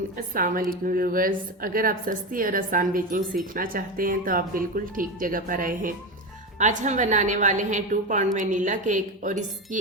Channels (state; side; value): normal; both; correlation 0.18